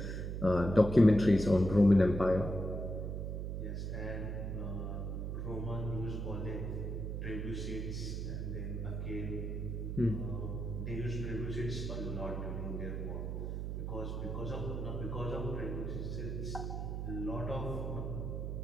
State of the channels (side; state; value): right; noise; hum, 3 dB below the sound